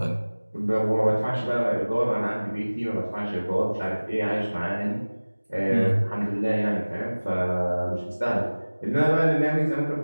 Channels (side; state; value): both; inverted; correlation -1.00